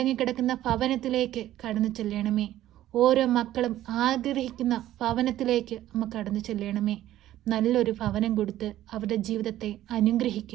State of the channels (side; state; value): left; quieter; 13.5 dB